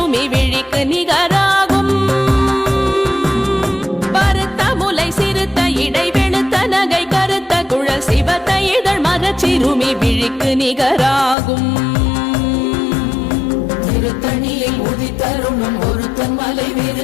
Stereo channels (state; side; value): drops out; right; at 11.4 s